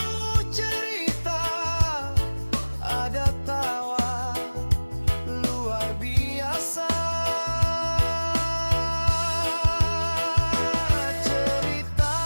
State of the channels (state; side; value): inverted; both; correlation -1.00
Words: cerita, ada tawa luar biasa. Cerita